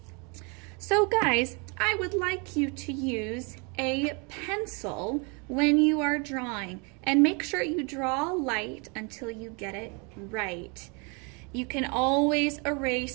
So guys, I would like you to use a pencil when you are drawing, and make sure you draw light until you get it right. You can always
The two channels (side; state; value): left; quieter; 32.8 dB